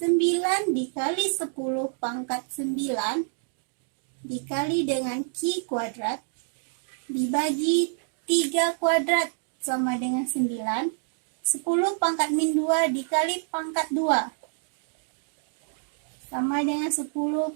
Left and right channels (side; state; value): left; silent; digital silence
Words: 9 dikali 10 pangkat 9 dikali dengan Q kuadrat dibagi 3 kuadrat sama dengan 9. 10 pangkat min 2 dikali pangkat 2 sama dengan 10